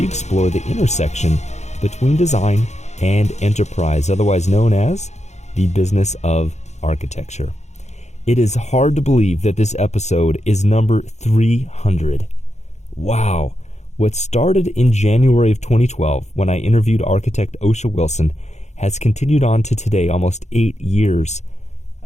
explore the intersection between design and enterprise, otherwise known as the business of architecture. It is hard to believe that this episode is number 300. Wow. What started in January of 2012 when I interviewed architect Oscia Wilson has continued on to today, almost 8 years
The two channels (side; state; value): right; late; 0.33 ms